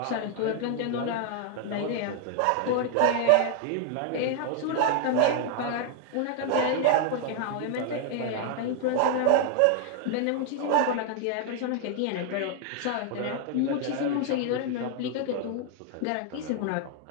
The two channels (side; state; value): both; different; correlation 0.00